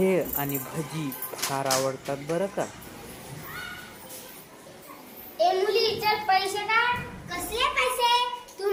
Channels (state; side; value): identical; both; correlation 1.00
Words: आणि भजी फार आवडतात बरं का. ए मुली, चल पैसे काढ. कसले पैसे? तू